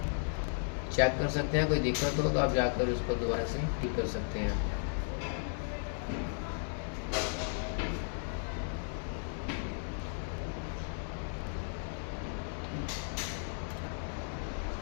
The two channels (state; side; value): silent; right; digital silence